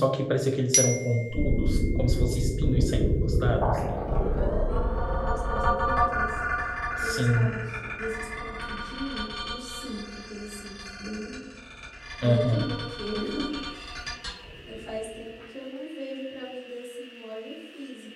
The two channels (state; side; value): identical; both; correlation 1.00